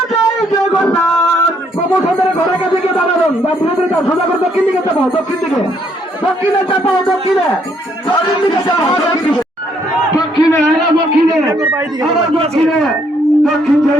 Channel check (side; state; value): both; normal; correlation 0.70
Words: জগন্নাথ প্রমোশনের ঘরের কাছে গিয়ে দাঁড়াবেন বা বিরোধীরা সোজা করে দক্ষিণ দিকে চাপাও দক্ষিণ দিকে দক্ষিণে চাপাও দক্ষিণে দক্ষিণ দিকে চাপাও দক্ষিণে দক্ষিণে আবার দক্ষিণে দক্ষিণ